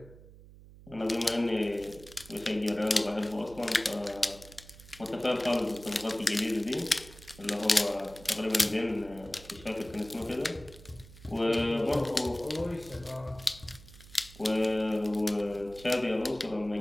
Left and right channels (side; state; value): right; noise; hum, 20 dB below the sound